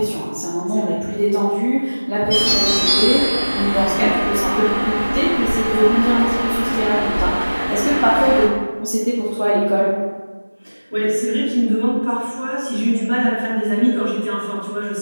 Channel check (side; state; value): both; inverted; correlation -1.00